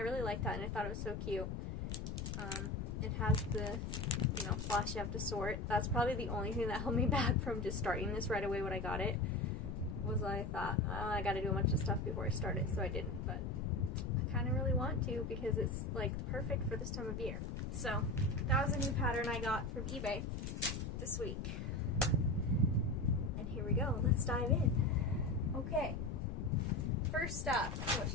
like that, and I thought it was so cute. It has the, floss you have to sort. That's probably the only thing that held me back from just starting this right away when I got it, was I thought, oh, I gotta do a bunch of stuff before I start it, so I didn't, but I kind of really want to because it's like perfect for this time of year. So that was a new pattern I got from eBay this week. And here we go, let's dive in. Okay, first up, what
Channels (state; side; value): noise; left; rumble, 4 dB below the sound